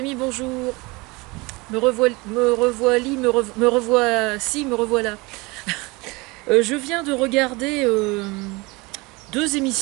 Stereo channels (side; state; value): left; quieter; 24.8 dB